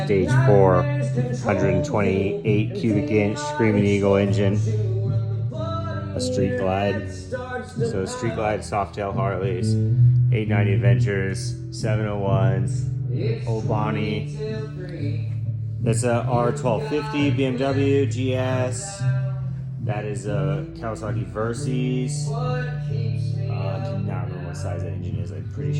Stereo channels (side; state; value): both; identical; correlation 1.00